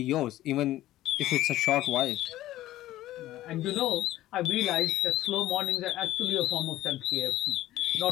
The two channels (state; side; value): quieter; right; 14.9 dB